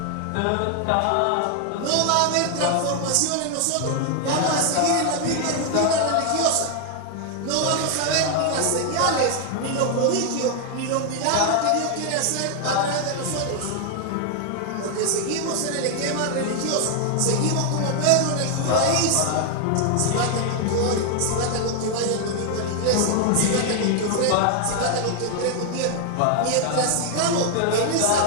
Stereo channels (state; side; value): different; both; correlation 0.00